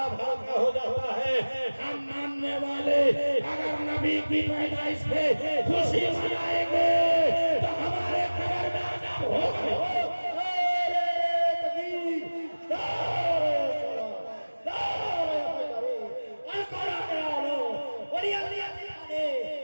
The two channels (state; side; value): inverted; both; correlation -1.00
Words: हल्का हो जाता है। हम मानने वाले अगर नबी की पैदाइश पे खुशी मनाएंगे तो हमारे कब्र में अज़ाब होगा।